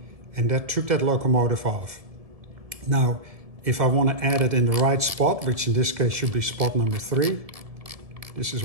And that took that locomotive off. Now, if I want to add it in the right spot, which in this case should be spot number 3, this is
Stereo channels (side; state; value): left; late; 1.7 ms